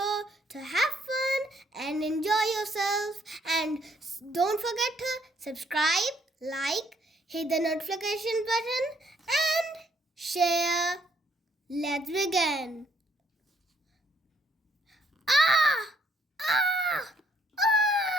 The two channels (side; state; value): both; normal; correlation 0.69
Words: to have fun and enjoy yourself, and don't forget to subscribe, like, hit the notification button and share. Let's begin. Ah! Ah!